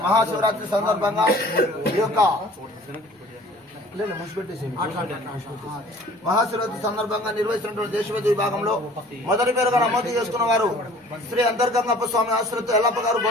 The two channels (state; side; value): normal; both; correlation 0.50